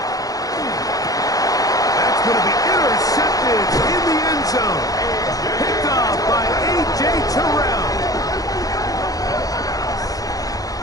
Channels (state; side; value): late; right; 0.17 ms